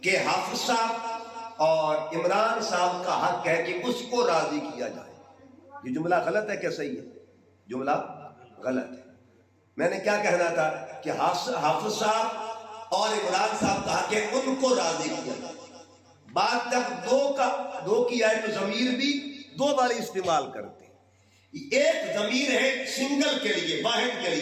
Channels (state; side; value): identical; both; correlation 1.00